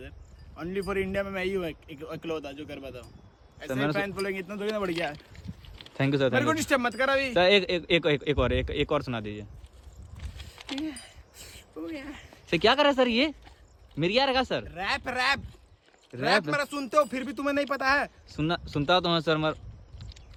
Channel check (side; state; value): both; identical; correlation 1.00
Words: ओनली फॉर इंडिया में मैं ही हूँ इकलौता जो कर पाता हूँ। ऐसे मैंने फैन फॉलोइंग इतना थोड़ी ना बढ़ गया। थैंक यू सर, मेरे थैंक को यू डिस्टर्ब मत कर अभी। सर। एक और सुना दीजिए सर। क्या कर रहा है सर ये? मेरी यार है सर। रैप रैप मेरा सुनते हो फिर भी तुम्हें नहीं पता है। सुनता तो हूँ सर मर।